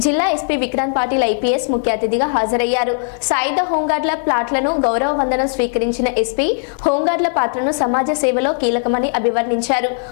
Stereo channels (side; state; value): right; silent; digital silence